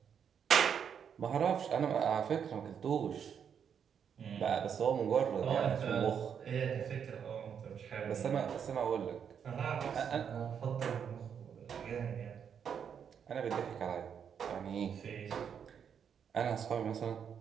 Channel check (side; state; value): left; quieter; 7.7 dB